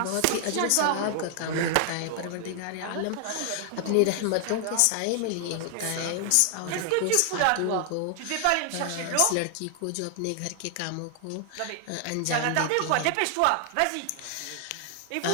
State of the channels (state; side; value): different; both; correlation 0.00